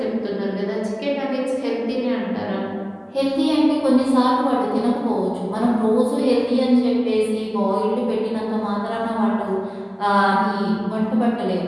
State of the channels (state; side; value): identical; both; correlation 1.00